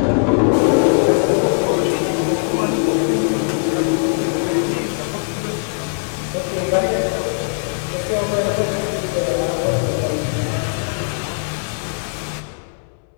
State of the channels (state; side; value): silent; right; digital silence